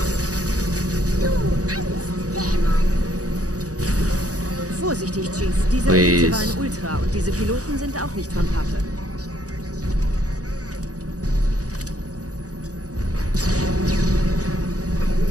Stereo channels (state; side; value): late; left; 0.67 ms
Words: Übrigens, dieser Elite war ein Ultra und diese Piloten sind auch nicht von Pappe.